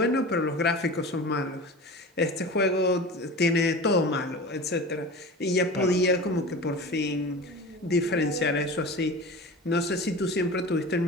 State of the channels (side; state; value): both; normal; correlation 0.34